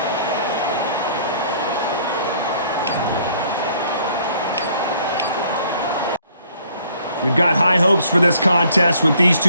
We've got high hopes for this contest with these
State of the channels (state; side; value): inverted; both; correlation -0.60